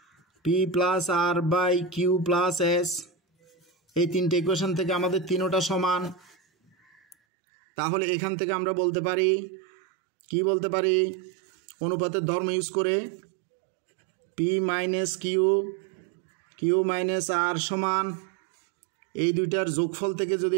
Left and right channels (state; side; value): drops out; left; at 7.2 s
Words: P plus R by Q plus S. এই 3টে ইকুয়েশন থেকে আমাদের 3টা সমান। তাহলে এখান থেকে আমরা বলতে পারি, কি বলতে পারি? অনুপাতের ধর্ম ইউজ করে পি মাইনাস কিউ মাইনাস আর সমান এই দুইটার যোগফল থেকে যদি